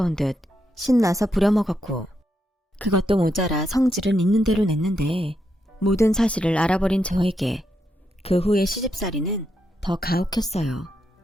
듯 신나서 부려먹었고, 그것도 모자라 성질은 있는 대로 냈는데 모든 사실을 알아버린 저에게 그 후의 시집살이는 더 가혹했어요.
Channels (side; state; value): both; normal; correlation 0.82